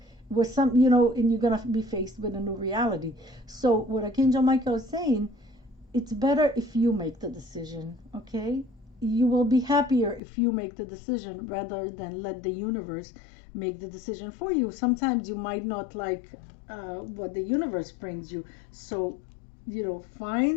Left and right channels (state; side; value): drops out; right; at 10.2 s